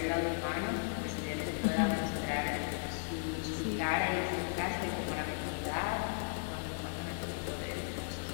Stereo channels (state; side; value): silent; right; digital silence